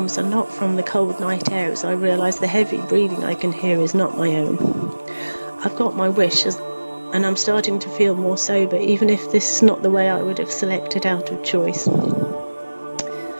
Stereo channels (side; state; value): both; inverted; correlation -1.00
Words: are not from the cold night air, as I realise the heavy breathing I can hear is not my own. I've got my wish, and I'm starting to feel more sober, even if this is not the way I would have selected out of choice.